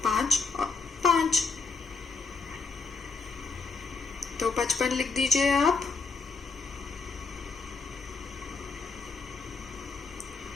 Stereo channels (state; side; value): quieter; right; 4.5 dB